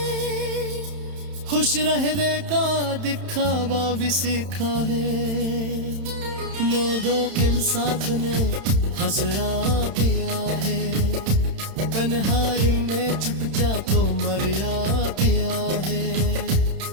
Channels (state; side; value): late; left; 31 ms